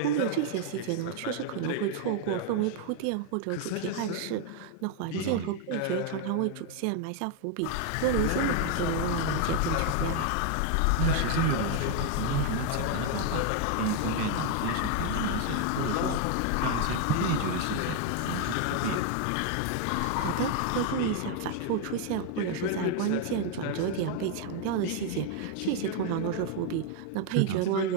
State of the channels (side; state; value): both; different; correlation 0.01